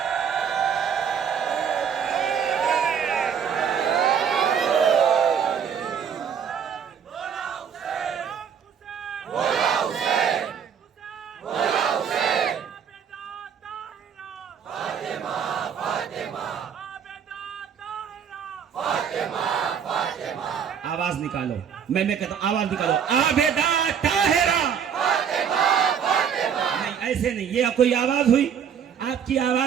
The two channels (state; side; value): quieter; left; 7.7 dB